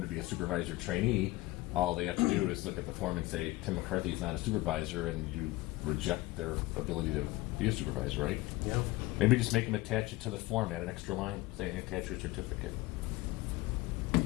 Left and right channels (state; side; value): quieter; right; 19.7 dB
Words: to be a supervisor trainee, all they have to do is look at the form and say, Tim McCarthy's not a supervisor, and you reject their ability to be a supervisor, right? Yeah. Maybe just make them attach it to the form, add an extra line saying attach your certificate.